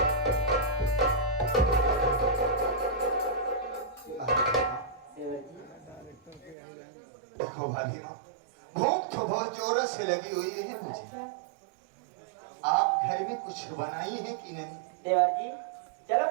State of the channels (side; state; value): left; drops out; at 6.6 s